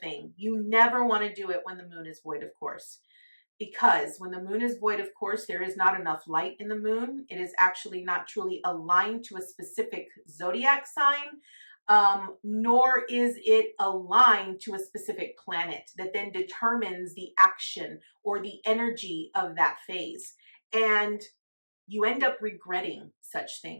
thing. You never want to do it when the moon is void of course. Because when the moon is void of course, there is not enough light in the moon. It is actually not truly aligned to a specific zodiac sign, nor is it aligned to a specific planet that then determines the action or the energy of that phase. And you end up regretting such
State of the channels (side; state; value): both; inverted; correlation -1.00